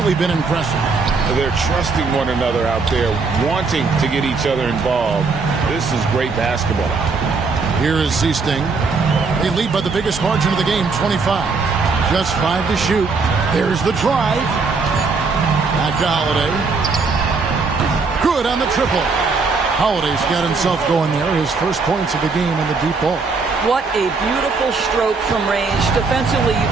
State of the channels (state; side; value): quieter; left; 4.4 dB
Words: been impressive. They're trusting one another out there, wanting to get each other involved. This is great basketball. Here is Seasting. They lead by the biggest margin of the game, 25. Just 5 to shoot. There's the drive. Back to Holiday. Good on the triple. Holiday's got himself going there. His first points of the game in the deep ball. What a beautiful stroke from range. Defensively,